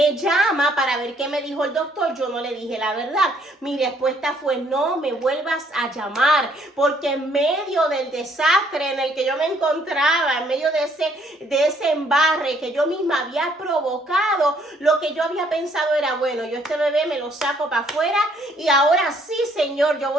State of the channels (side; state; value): both; normal; correlation 0.66